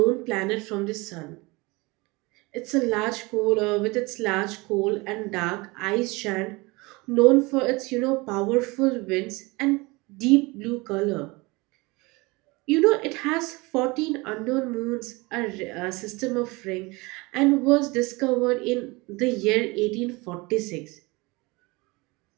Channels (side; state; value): left; quieter; 24.5 dB